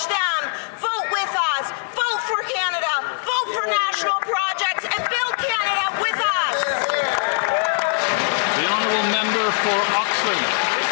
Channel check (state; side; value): silent; right; digital silence